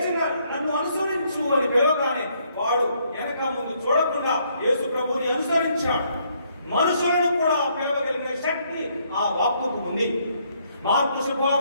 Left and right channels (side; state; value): both; inverted; correlation -0.70